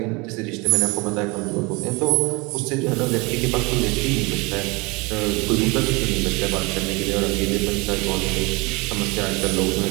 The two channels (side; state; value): left; quieter; 26.3 dB